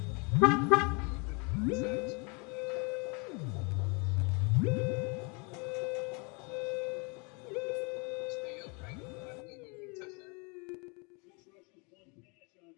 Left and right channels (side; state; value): right; quieter; 31.9 dB